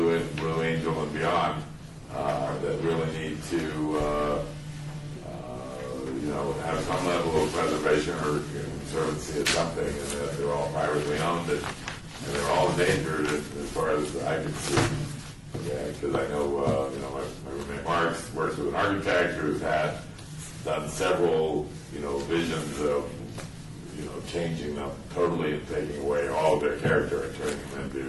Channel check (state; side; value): identical; both; correlation 1.00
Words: Angel and beyond, that really need to, have some level of preservation or conservancy or something, and that they're all privately owned and they're all endangered as far as I can see. Yeah, because I know, my roommate Mark's works with an architect who's done several, visions of, changing them totally and taking away all of their character and turning them